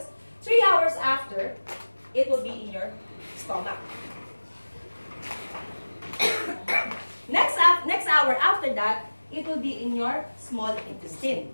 3 hours after, it will be in your stomach. Next hour after that, it will be in your small intestine.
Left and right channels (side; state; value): both; inverted; correlation -1.00